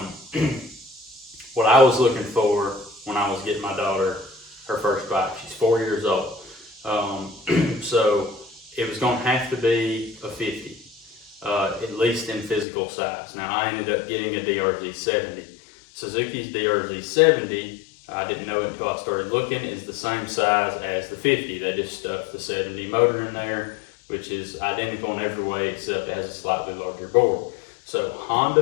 what I was looking for when I was getting my daughter her first bike, she's 4 years old. So it was going to have to be a 50, at least in physical size. Now I ended up getting a DRZ 70. Suzuki's DRZ 70, I didn't know it until I started looking, is the same size as the 50. They just stuffed the 70 motor in there, which is identical in every way except it has a slightly larger board. So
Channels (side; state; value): right; drops out; at 12.7 s